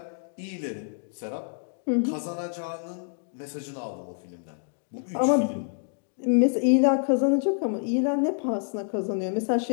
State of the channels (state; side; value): silent; right; digital silence